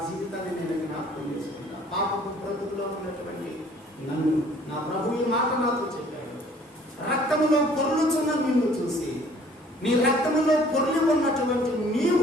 జీవితాన్ని నేను జ్ఞాపకం చేసుకుంటా. పాపపు బ్రతుకులో ఉన్నటువంటి నన్ను నా ప్రభు ఈ మాట నాతో చెప్పాడు. రక్తములో పొర్లుచున్న నిన్ను చూసి, నీ రక్తములో పొర్లి ఉన్నటువంటి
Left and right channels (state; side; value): normal; both; correlation 0.56